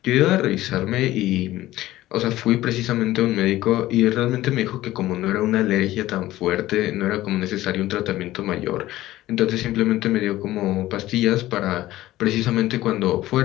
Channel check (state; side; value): quieter; right; 15.8 dB